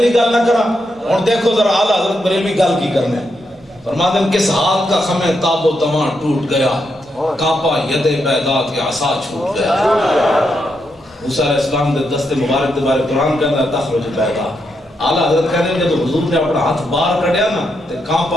گل نہ کرا ہن دیکھو ذرا اعلی حضرت بریلوی گل کی کرنے فرماتے ہیں کس ہاتھ کا خم تاب و تماں ٹوٹ گیا کانپا ید بیضا کے عصا چھوٹ گیا موسیٰ علیہ السلام دے دست مبارک دے بارے قرآن کہتا ہے تخرج بیضا اعلی حضرت کہتے ہیں جب حضور نے اپنا ہاتھ باہر کڑیا نا تے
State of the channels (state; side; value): normal; both; correlation 0.82